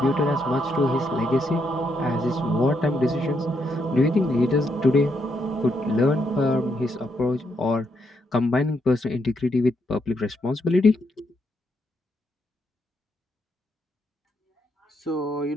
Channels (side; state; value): both; normal; correlation 0.78